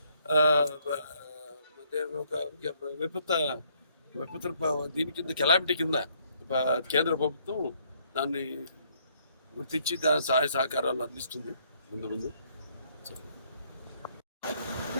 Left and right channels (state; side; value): inverted; both; correlation -0.67